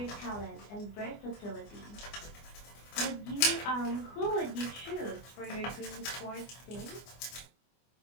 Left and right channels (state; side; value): late; right; 24 ms